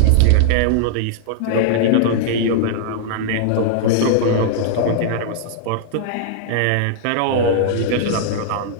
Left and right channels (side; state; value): both; different; correlation -0.01